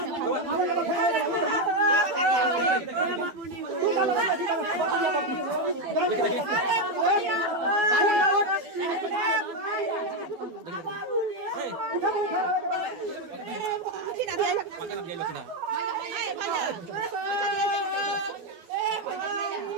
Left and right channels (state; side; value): late; left; 12 ms